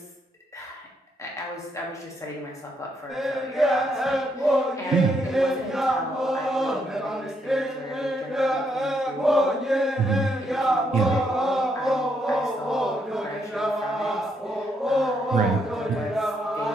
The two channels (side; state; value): both; normal; correlation 0.76